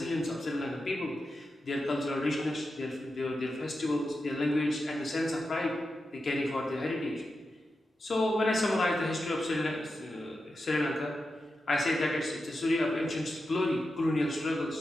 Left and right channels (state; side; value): normal; both; correlation 0.89